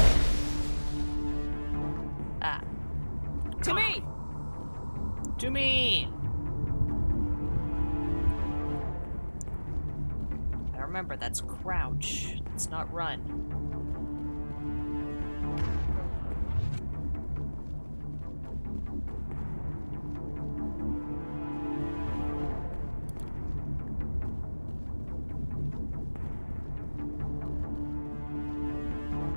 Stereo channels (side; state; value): both; inverted; correlation -1.00